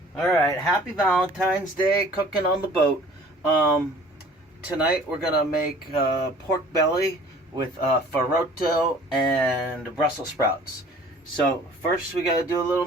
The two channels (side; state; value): both; normal; correlation 0.50